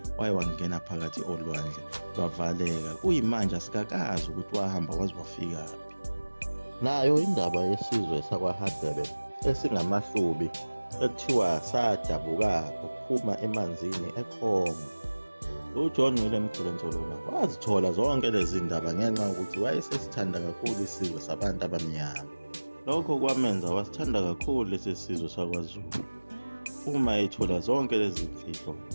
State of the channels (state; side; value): inverted; both; correlation -1.00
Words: wangena phakathi olwandle lwavaleka. Kuyimanje asikakazi ukuthi wahamba waze wafikaphi. Nayo indaba yesizwe sakwaHadebe esingamahlubi ekuthiwa sadabuka ukuphuma emanzini eCongo. uJohn William Khulensholona wazithola zonke lezi ndaba ngenxa yokuthi wayesesithanda kakhulu isizwe sabantu abamnyama. Lokho kwamenza wasithanda kakhulu lesi sizwe sakwaZulu. Uma ethola zonke lezi mfihlo